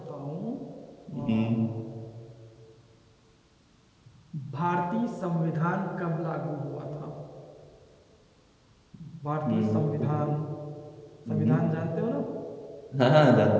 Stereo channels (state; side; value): identical; both; correlation 1.00